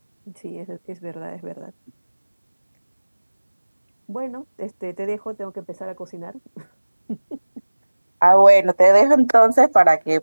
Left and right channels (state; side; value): inverted; both; correlation -1.00